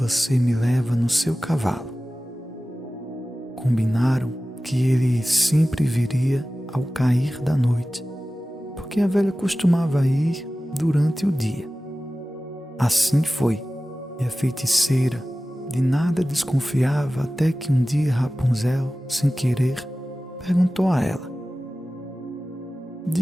me leva no seu cavalo. Combinaram que ele sempre viria ao cair da noite, porque a velha costumava ir durante o dia. Assim foi, e a feiticeira de nada desconfiava até que um dia Rapunzel, sem querer, perguntou a ela:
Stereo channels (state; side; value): normal; both; correlation 0.96